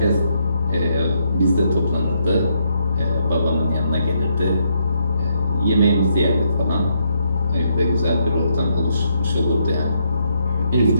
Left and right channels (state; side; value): inverted; both; correlation -0.76